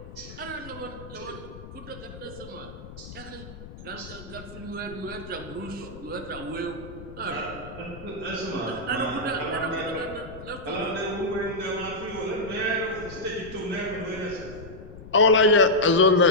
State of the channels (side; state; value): left; noise; rumble, 14 dB below the sound